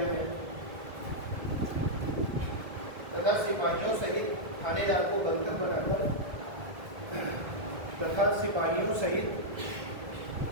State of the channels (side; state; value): left; late; 1.8 ms